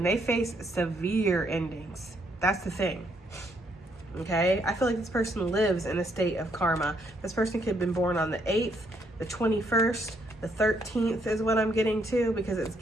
they face severe endings. That's the thing. Okay, I feel like this person lives in a state of karma. This person could have been born on the 8th, the 21st, the 13th is what I'm getting to, because it's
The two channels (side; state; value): both; normal; correlation 0.72